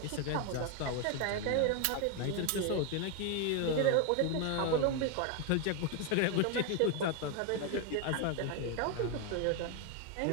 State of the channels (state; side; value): different; both; correlation 0.01